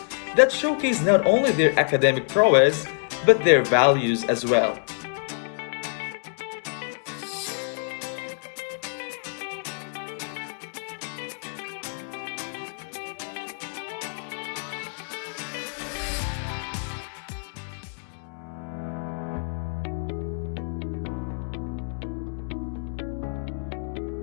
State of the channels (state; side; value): silent; right; 60 dB below the other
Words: that showcase not only their academic prowess, but their values as well.